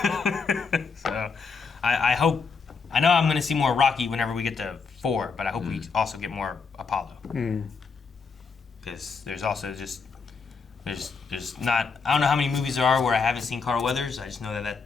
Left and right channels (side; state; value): right; quieter; 5.0 dB